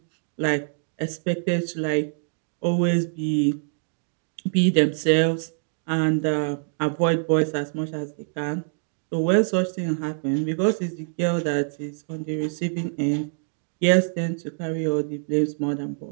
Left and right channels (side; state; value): left; silent; digital silence